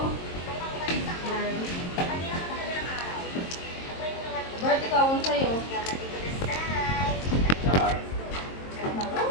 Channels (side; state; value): right; late; 22 ms